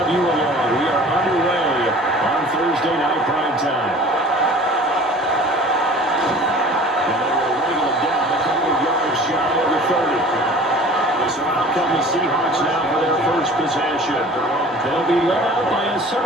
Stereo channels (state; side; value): normal; both; correlation 0.45